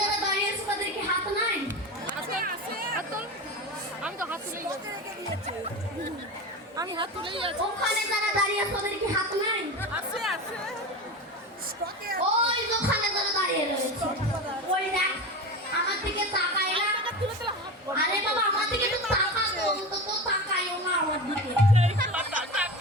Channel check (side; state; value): both; normal; correlation 0.26